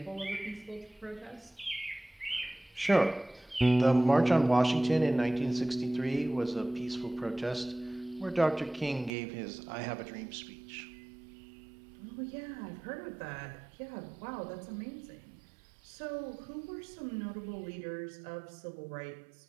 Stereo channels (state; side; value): drops out; left; at 9.1 s